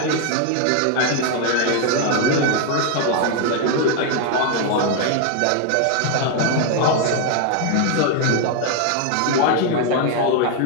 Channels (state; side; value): different; both; correlation 0.00